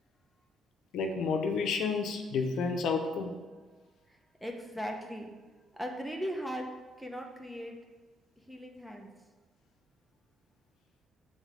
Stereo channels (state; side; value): quieter; right; 3.4 dB